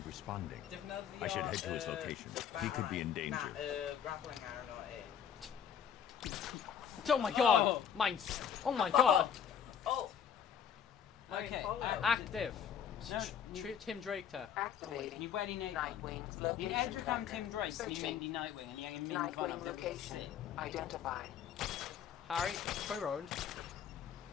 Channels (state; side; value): quieter; right; 8.4 dB